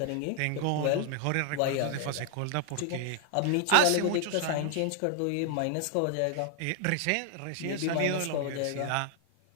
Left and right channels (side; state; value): both; different; correlation 0.00